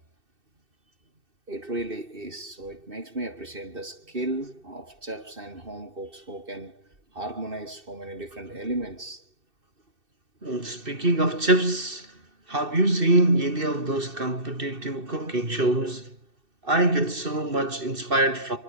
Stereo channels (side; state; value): left; late; 2.6 ms